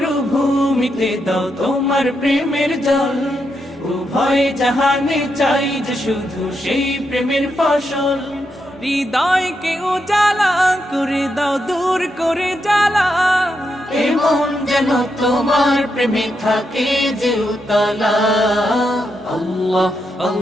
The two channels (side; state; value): both; normal; correlation 0.83